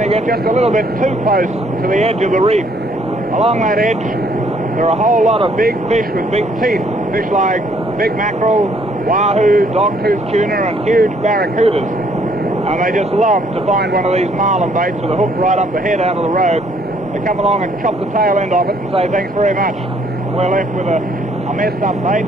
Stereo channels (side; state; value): both; normal; correlation 0.65